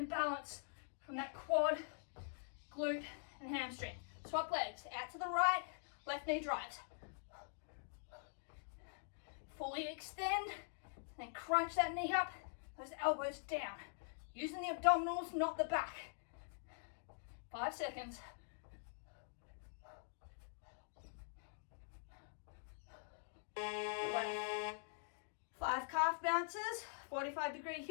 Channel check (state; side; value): silent; right; digital silence